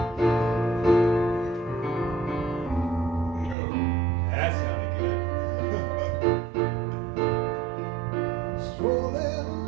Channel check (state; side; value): drops out; left; at 3.6 s